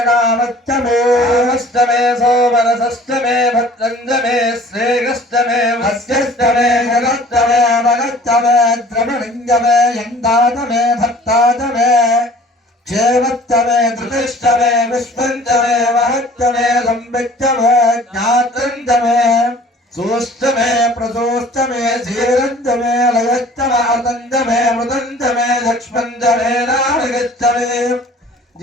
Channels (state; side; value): normal; both; correlation 0.49